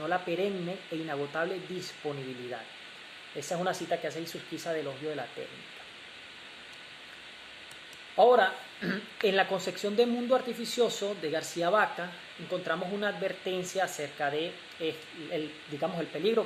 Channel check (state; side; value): identical; both; correlation 1.00